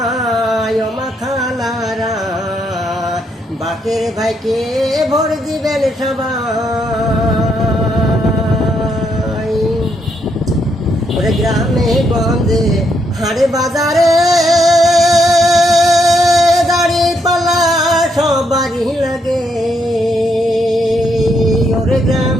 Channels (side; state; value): both; normal; correlation 0.76